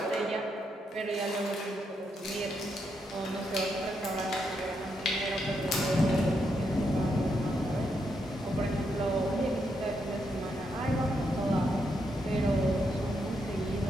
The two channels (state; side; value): normal; both; correlation 0.80